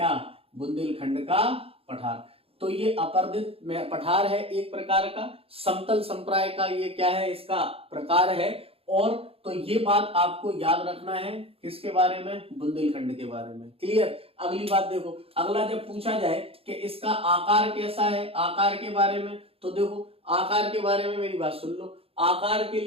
बुंदेलखंड का पठार। तो ये अपर्दित पठार है एक प्रकार का, समतल संप्राय का ये क्या है, इसका प्रकार है। और तो ये बात आपको याद रखना है किसके बारे में, बुंदेलखंड के बारे में। क्लियर। अगली बात देखो, अगला जब पूछा जाए कि इसका आकार कैसा है, आकार के बारे में, तो देखो आकार के बारे में मेरी बात सुन लो। आकार के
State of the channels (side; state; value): left; late; 0.28 ms